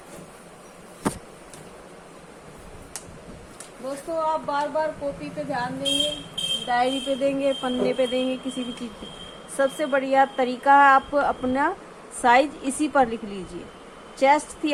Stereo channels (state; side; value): identical; both; correlation 1.00